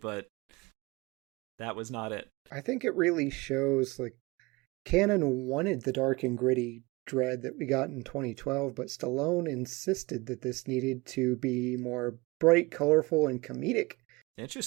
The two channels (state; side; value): quieter; left; 23.9 dB